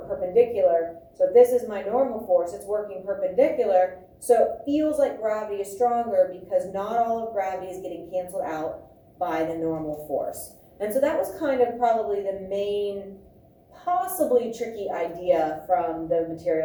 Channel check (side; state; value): both; identical; correlation 1.00